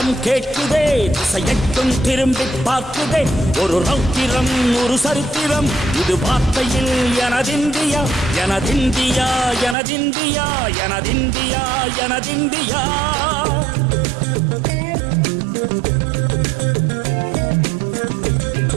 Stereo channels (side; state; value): left; drops out; at 9.8 s